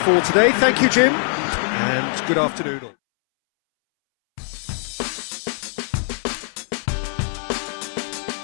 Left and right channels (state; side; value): silent; right; 63 dB below the other